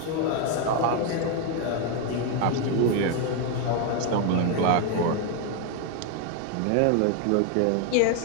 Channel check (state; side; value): different; both; correlation 0.01